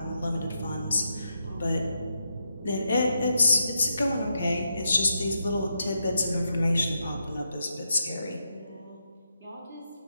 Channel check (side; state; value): both; inverted; correlation -0.83